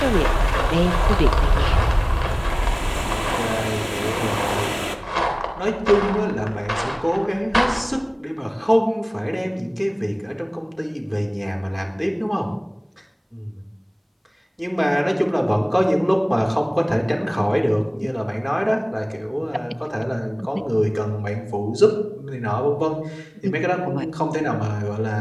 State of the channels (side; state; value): both; identical; correlation 1.00